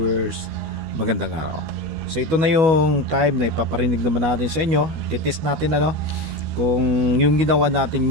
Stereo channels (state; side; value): late; left; 12 ms